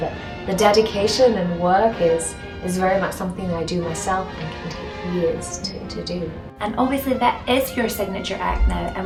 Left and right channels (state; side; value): identical; both; correlation 1.00